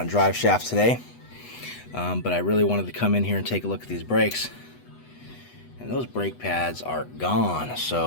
drive shaft today. But I really wanted to come in here and take a look at these brakes. And those brake pads are gone,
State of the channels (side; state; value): right; late; 8.1 ms